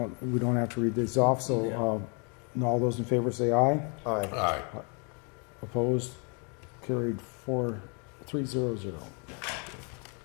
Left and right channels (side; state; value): right; quieter; 36.0 dB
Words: we don't have to read these off, so all those in favor say aye. Aye. Aye. Opposed? Carried 4-3-0-0.